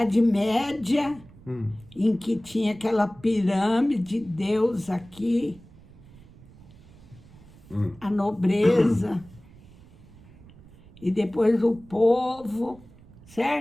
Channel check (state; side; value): noise; right; rumble, 23 dB below the sound